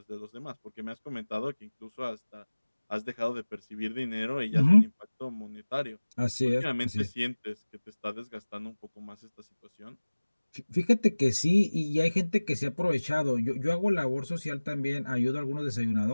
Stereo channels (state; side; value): inverted; both; correlation -1.00